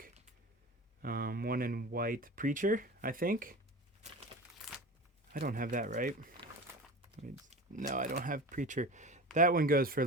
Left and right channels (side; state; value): both; normal; correlation 0.32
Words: One in white, Preacher, I think. I don't have that, right? No, I don't have Preacher. That one goes for a